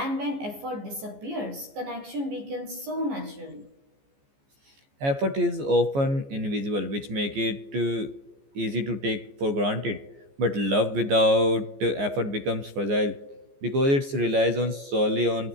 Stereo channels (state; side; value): late; left; 14 ms